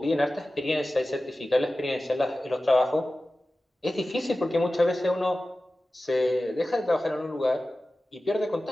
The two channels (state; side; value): normal; both; correlation 0.95